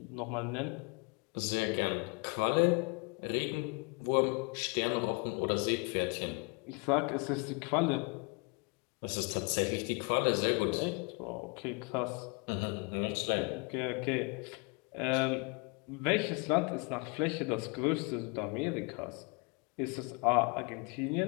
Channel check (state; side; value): quieter; right; 31.8 dB